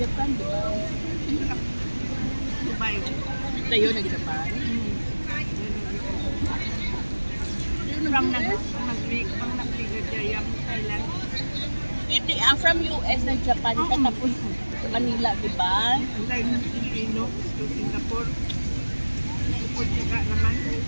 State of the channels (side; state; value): both; inverted; correlation -1.00